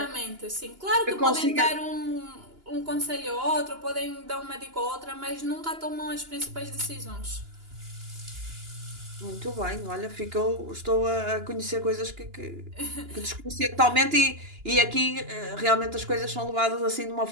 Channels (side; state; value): left; late; 2.9 ms